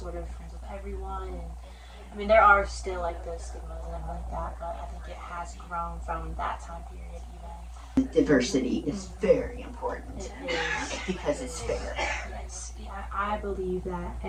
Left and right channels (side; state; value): both; identical; correlation 1.00